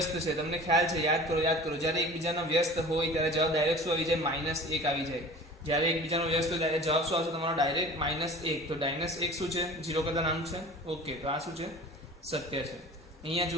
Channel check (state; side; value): normal; both; correlation 0.42